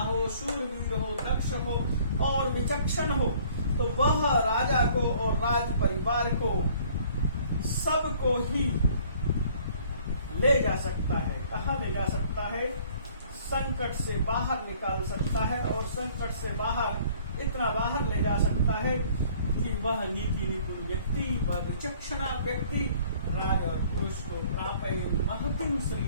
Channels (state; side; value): inverted; both; correlation -0.56